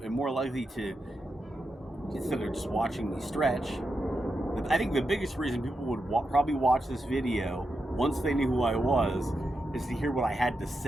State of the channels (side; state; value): both; normal; correlation 0.87